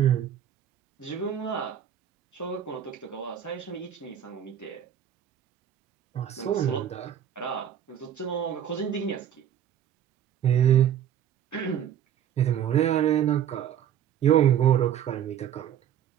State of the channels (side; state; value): left; quieter; 9.8 dB